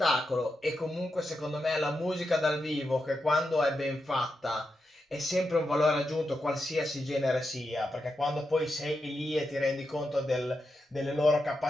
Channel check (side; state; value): both; normal; correlation 0.87